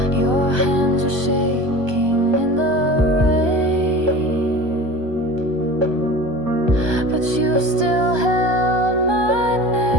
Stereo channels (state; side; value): late; left; 1.2 ms